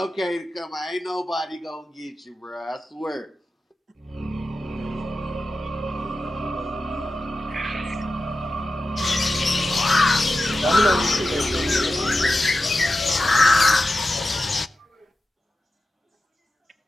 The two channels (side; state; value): both; normal; correlation 0.93